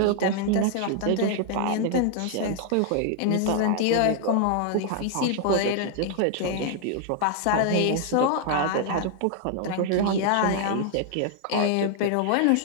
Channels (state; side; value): different; both; correlation 0.00